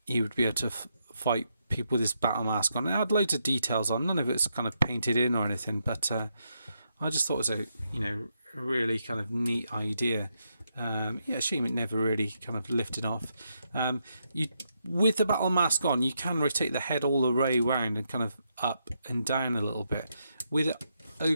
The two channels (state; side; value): inverted; both; correlation -0.80